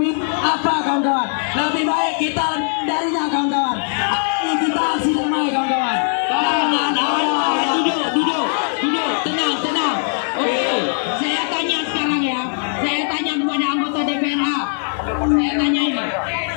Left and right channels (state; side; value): silent; right; 60 dB below the other